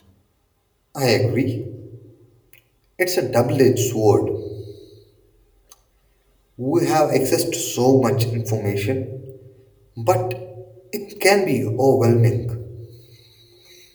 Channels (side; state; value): both; identical; correlation 1.00